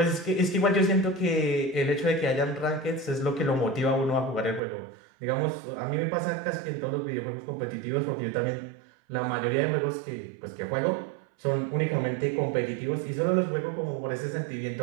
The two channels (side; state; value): left; drops out; at 4.6 s